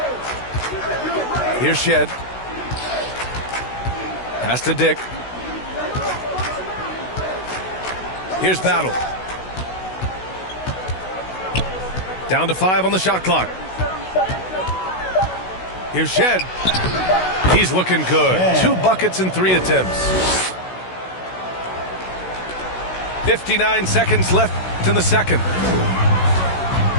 Here's Shed. Pass to Dick. Here's Battle. Down to 5 on the shot clock. Here's Shed. He's looking good. 2 buckets in 3 attempts. 59 seconds left in the second.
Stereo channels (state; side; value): late; right; 16 ms